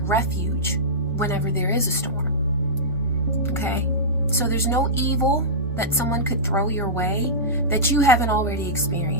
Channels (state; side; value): normal; both; correlation -0.16